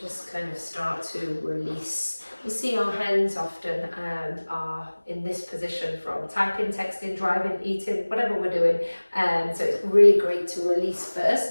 just kind of start to release. You see our hands often are in this position from typing, texting, driving, eating, whatever we're doing. So it's really great to release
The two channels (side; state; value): both; inverted; correlation -1.00